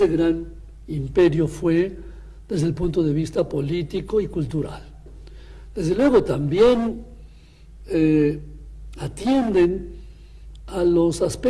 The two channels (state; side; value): identical; both; correlation 1.00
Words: gran imperio fue desde el punto de vista político y cultural. Desde luego también atienden a los